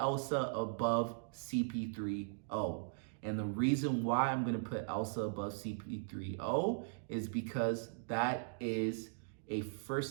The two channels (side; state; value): left; silent; digital silence